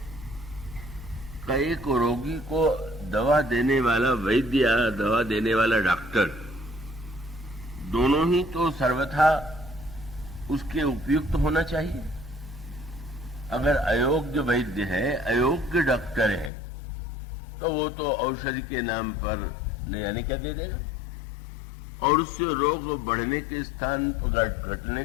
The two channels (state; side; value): drops out; right; at 16.5 s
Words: एक रोगी को दवा देने वाला वैद्य या दवा देने वाला डॉक्टर, दोनों ही तो सर्वथा उसके उपयुक्त होना चाहिए। अगर अयोग्य वैद्य है, अयोग्य डॉक्टर है, तो वो तो औषधि के नाम पर न जाने क्या दे देगा और उससे रोग बढ़ने के स्थान पर, घटने